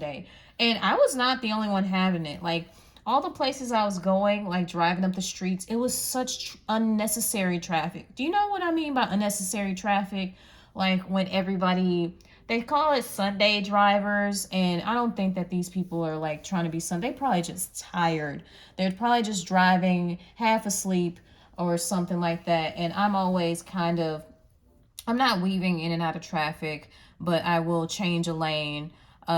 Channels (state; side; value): identical; both; correlation 1.00